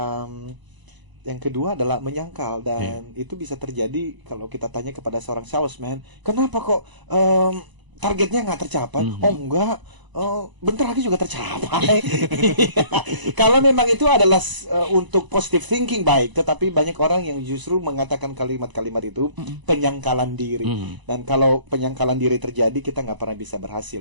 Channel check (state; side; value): late; left; 1.0 ms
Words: Yang kedua adalah menyangkal, dan itu bisa terjadi kalau kita tanya kepada seorang salesman, kenapa kok targetnya nggak tercapai? Oh enggak, bentar lagi juga tercapai. Kalau memang itu adalah untuk positive thinking baik, tetapi banyak orang yang justru mengatakan kalimat-kalimat itu penyangkalan diri. Dan kalau penyangkalan diri terjadi, kita nggak pernah bisa